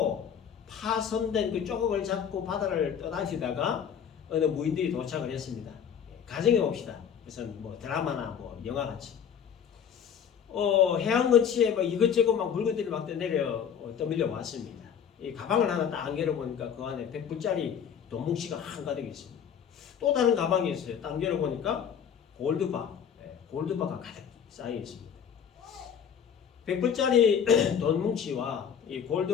파손된 그 조각을 잡고 바다를 떠나시다가 어느 무인들이 도착을 했습니다. 가정해 봅시다. 그래서 뭐 드라마나 뭐 영화 같이. 해안 근처에 뭐 이것저것 막 물건들이 막 떠밀려 왔습니다. 이 가방을 하나 딱 열어보니까 그 안에 100불짜리 돈뭉치가 한가득 있습니다. 또 다른 가방이 있어요. 딱 열어보니까 골드바가 가득 쌓여 있습니다. 100불짜리 돈뭉치와 이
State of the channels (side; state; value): right; quieter; 8.0 dB